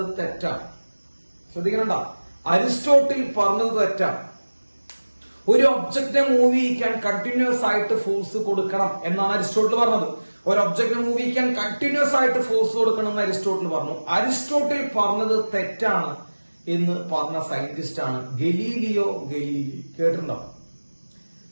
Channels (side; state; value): both; inverted; correlation -1.00